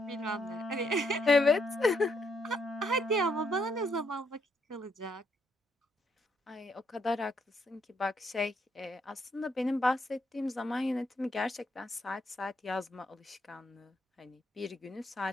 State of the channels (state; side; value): normal; both; correlation 0.74